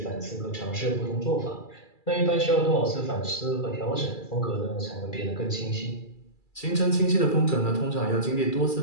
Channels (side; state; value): right; late; 2.3 ms